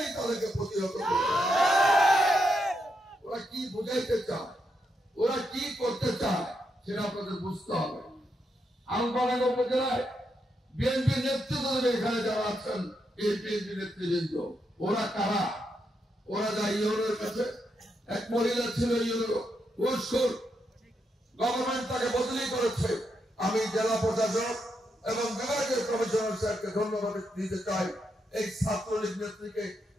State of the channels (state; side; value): normal; both; correlation 0.82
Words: তাদেরকে প্রতিহত করবে। ওরা কি বুঝাইতে চায়, ওরা কি করতে চায় সেটা আপনাদের বুঝতে হবে। আলফাডাঙ্গা উপজেলায় বিএনপির নেতৃত্ব দেবে এখানে যারা আছেন, এই বিএনপি নেতৃবৃন্দ। ওরা কারা? ওরা যা ইউনোর কাছে এক মহিলা ছিল, ইউনো ঘুষখোর, গভর্নমেন্ট তাকে বদলি করেছে। আমি জেলা প্রশাসক এবং বিভাগীয় কমিশনার স্যারকে ধন্যবাদ দিতে চাই। এই ছাত্রলীগ নেত্রীকে